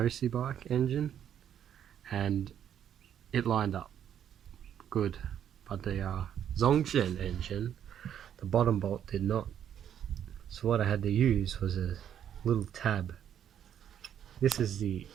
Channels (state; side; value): quieter; left; 9.6 dB